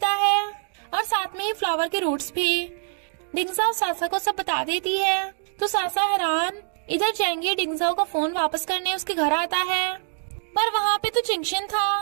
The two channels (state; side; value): silent; left; digital silence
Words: है और साथ में ही फ्लावर के रूट्स भी। डिंगजाओ सासा को सब बता देती है तो सासा हैरान। इधर जेंगी डिंगजाओ का फोन वापस करने उसके घर आता है, पर वहाँ पे तो चिंगशिन